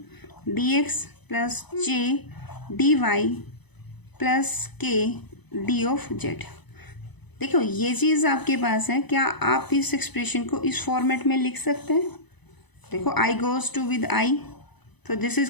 dx plus j dy plus k d of z। देखो ये चीज़ आपके पास है, क्या आप इस expression को इस format में लिख सकते हैं? देखो I goes to with I, तो this is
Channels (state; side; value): late; right; 0.99 ms